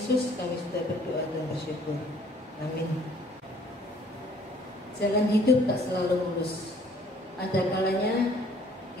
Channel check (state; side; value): normal; both; correlation 0.58